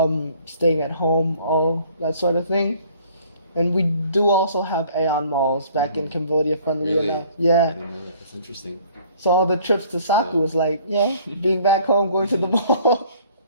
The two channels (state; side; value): inverted; both; correlation -0.56